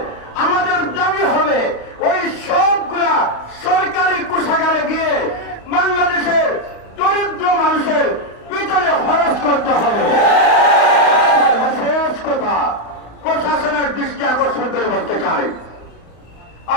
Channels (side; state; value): right; late; 35 ms